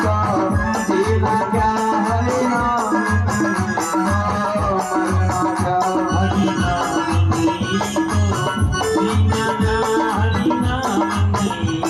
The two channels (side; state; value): both; identical; correlation 1.00